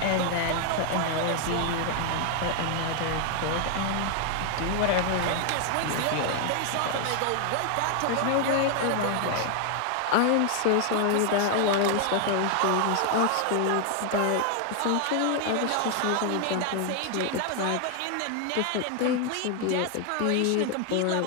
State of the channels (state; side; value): different; both; correlation 0.00